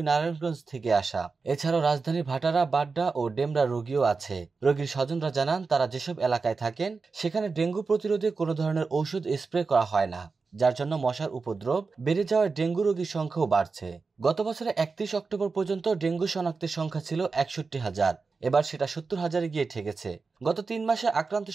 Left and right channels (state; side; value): quieter; left; 4.4 dB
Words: নারায়ণগঞ্জ থেকে আসা। এছাড়াও রাজধানীর ভাটারা, বাড্ডা ও ডেমরা রোগীও আছে। রোগীর স্বজনরা জানান, তারা যেসব এলাকায় থাকেন সেখানে ডেঙ্গু প্রতিরোধে কোনো ধরনের ঔষধ স্প্রে করা হয় না, যার জন্য মশার উপদ্রব বেড়ে যাওয়ায় ডেঙ্গু রোগীর সংখ্যাও বাড়ছে। গত বছরে 31 অক্টোবর পর্যন্ত ডেঙ্গু শনাক্তের সংখ্যা ছিল 61,000। এবার সেটা 70,000-এ গিয়ে ঠেকেছে। গত 3 মাসে